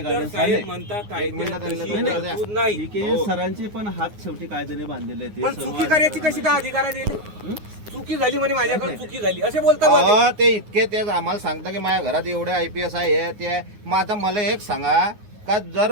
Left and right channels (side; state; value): left; late; 9.6 ms